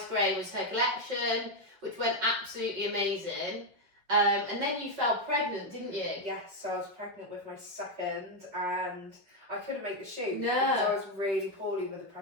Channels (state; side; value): late; left; 5.4 ms